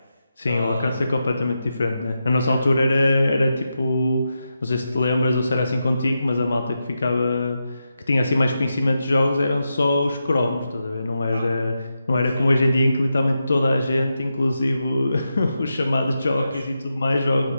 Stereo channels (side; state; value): both; inverted; correlation -0.88